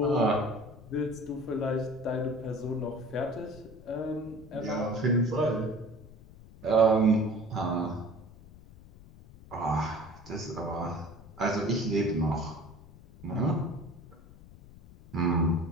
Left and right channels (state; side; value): noise; left; rumble, 20 dB below the sound